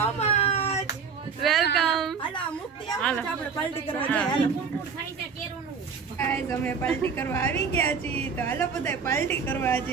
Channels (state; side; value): quieter; left; 5.8 dB